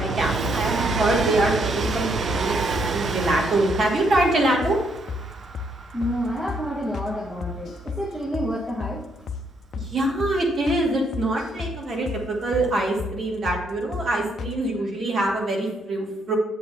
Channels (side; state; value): both; normal; correlation 0.73